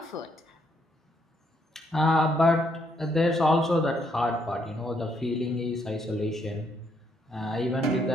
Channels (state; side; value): normal; both; correlation 0.73